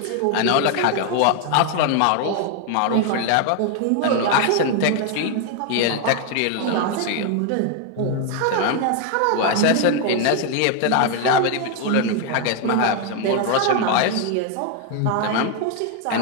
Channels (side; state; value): both; different; correlation 0.01